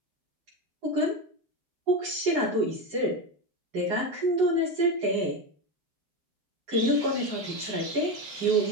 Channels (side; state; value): left; late; 10 ms